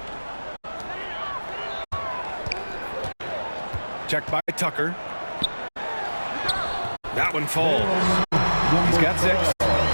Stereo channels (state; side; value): inverted; both; correlation -1.00